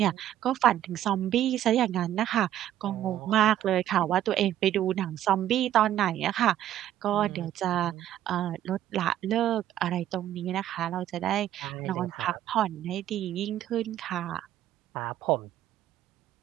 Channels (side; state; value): left; quieter; 12.0 dB